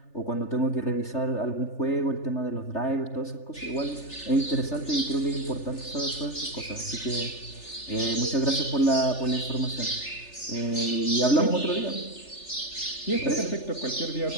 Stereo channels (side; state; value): right; late; 3.4 ms